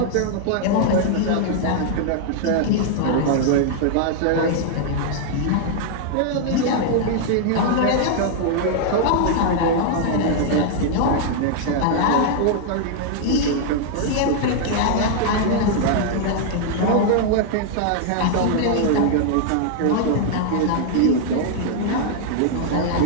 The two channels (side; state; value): both; different; correlation -0.01